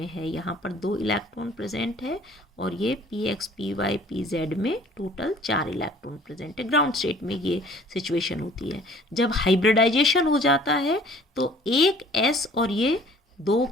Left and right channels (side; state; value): both; normal; correlation 0.53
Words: है। यहाँ पर 2 इलेक्ट्रॉन प्रेजेंट है और ये px py pz में टोटल 4 इलेक्ट्रॉन प्रेजेंट है। ग्राउंड स्टेट में ये सिचुएशन होती है। जब हाइब्रिडाइजेशन हो जाता है तो एक s और ये